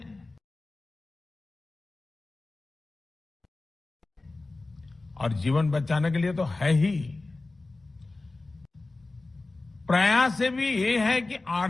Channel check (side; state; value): right; quieter; 3.2 dB